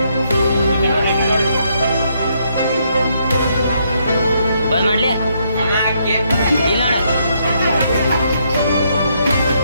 ಬಂದ್ ಮಾಡ್ಲಿ ಇಲ್ಲ ಎಲ್ಲ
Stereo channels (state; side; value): inverted; both; correlation -0.74